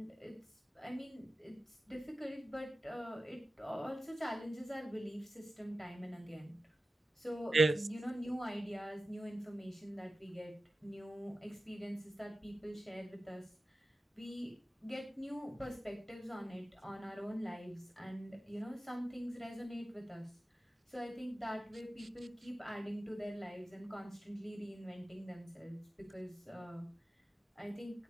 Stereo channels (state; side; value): normal; both; correlation 0.94